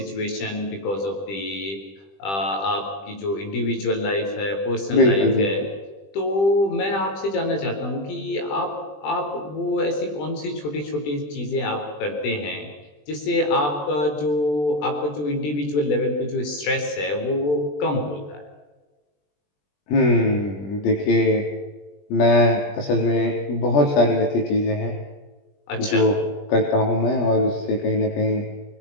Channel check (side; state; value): right; late; 20 ms